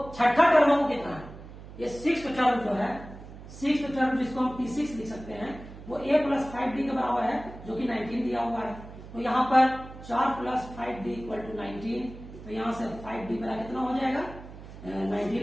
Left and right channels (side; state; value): right; noise; hum, 15 dB below the sound